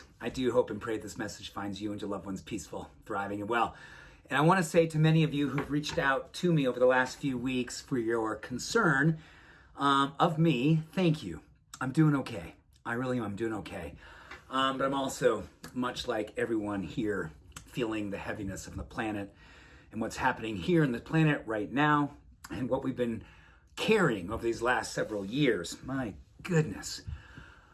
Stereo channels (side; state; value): both; identical; correlation 1.00